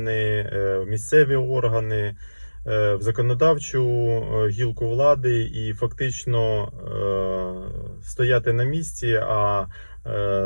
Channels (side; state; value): both; inverted; correlation -1.00